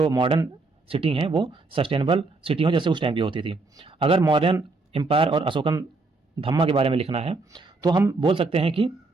मॉडर्न सिटी हैं वो सस्टेनेबल सिटी हों जैसे उस टाइम की होती थी। अगर मॉडर्न एम्पायर और अशोकन धम्मा के बारे में लिखना है तो हम बोल सकते हैं कि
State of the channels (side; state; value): left; quieter; 3.6 dB